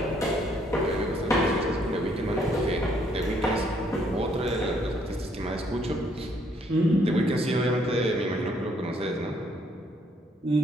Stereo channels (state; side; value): normal; both; correlation 0.68